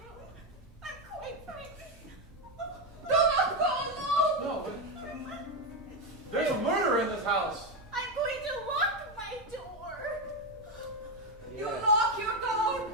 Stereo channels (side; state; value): both; normal; correlation 0.08